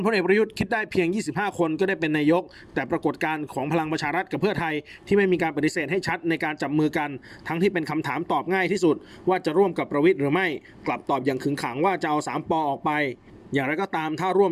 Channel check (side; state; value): both; identical; correlation 1.00